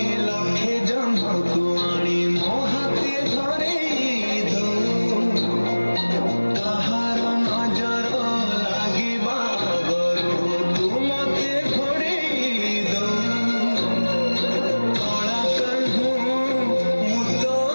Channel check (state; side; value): inverted; both; correlation -1.00